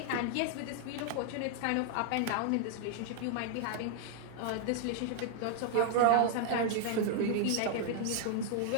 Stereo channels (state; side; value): different; both; correlation 0.00